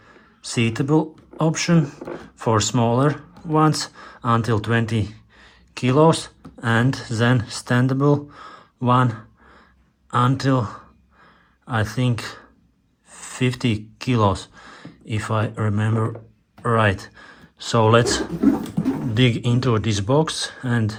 seatable option for smaller ones until 20 kilos, and then standable one until I think 50 kilos, if I remember right. So let's dig into this box and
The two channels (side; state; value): both; identical; correlation 1.00